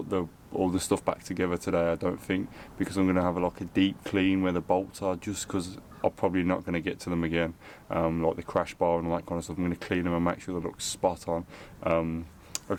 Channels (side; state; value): both; identical; correlation 1.00